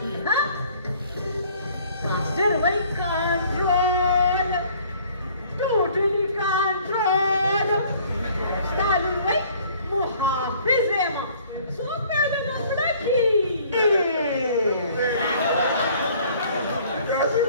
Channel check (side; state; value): both; inverted; correlation -0.56